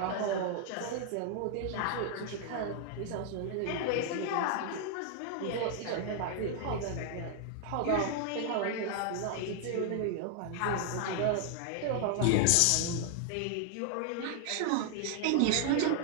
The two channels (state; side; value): different; both; correlation 0.00